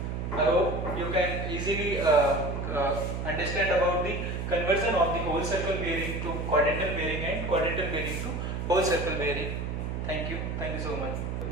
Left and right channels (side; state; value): right; noise; hum, 3 dB below the sound